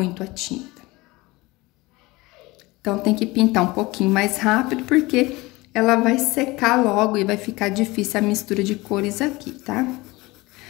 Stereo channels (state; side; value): quieter; right; 21.7 dB